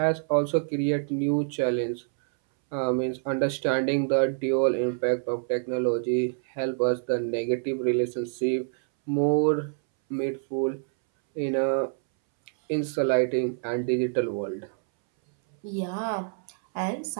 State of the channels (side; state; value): left; silent; 60 dB below the other